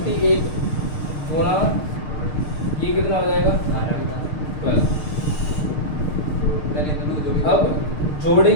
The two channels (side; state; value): right; late; 6.6 ms